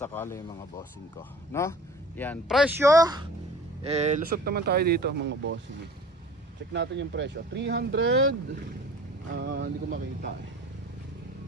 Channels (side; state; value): both; normal; correlation 0.45